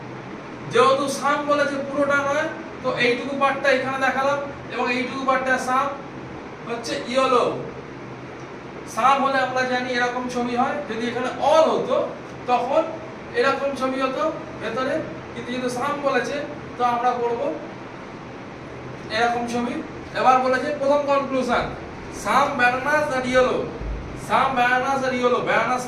যেহেতু সাম বলেছে পুরোটা নয়, তো এইটুকু পার্টটা এখানে দেখালাম এবং এইটুকু পার্টটা সাম হচ্ছে ইয়েলো। সাম হলে আমরা জানি এরকম ছবি হয়, যদি এখানে অল হতো তখন এরকম ছবি হতো ভেতরে, কিন্তু যেহেতু সাম বলেছে তো আমরা করব এরকম ছবি। এবার বলেছে প্রথম কনক্লুশন, সাম ব্যানানাস আর ইয়েলো। সাম ব্যানানাস আর ইয়েলো, ব্যানানাস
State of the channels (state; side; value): identical; both; correlation 1.00